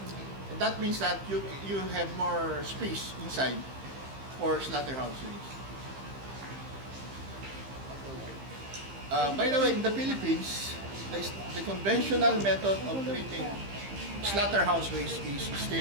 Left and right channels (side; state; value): left; late; 15 ms